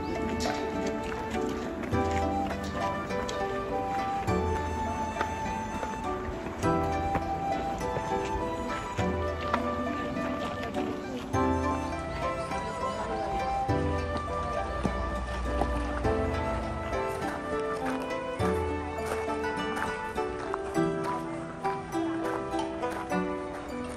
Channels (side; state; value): both; identical; correlation 1.00